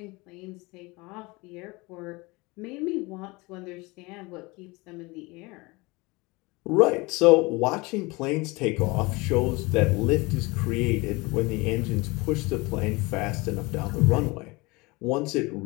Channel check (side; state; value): right; quieter; 24.5 dB